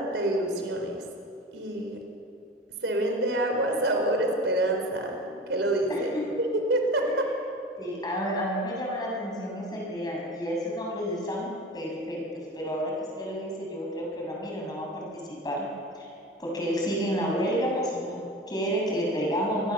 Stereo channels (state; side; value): normal; both; correlation 0.34